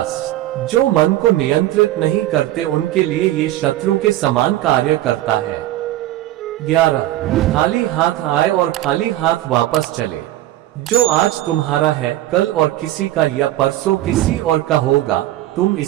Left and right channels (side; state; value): left; quieter; 14.7 dB